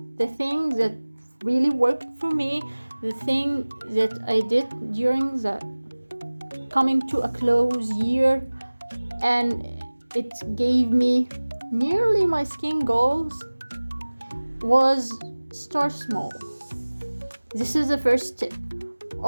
the thing that really worked for me, the thing that I did during the coming to a close year, and it gave me nearly my skin goals, was start small. This is the first tip.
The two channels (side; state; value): both; inverted; correlation -1.00